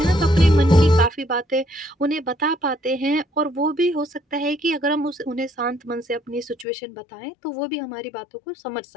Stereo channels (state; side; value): drops out; right; at 6.7 s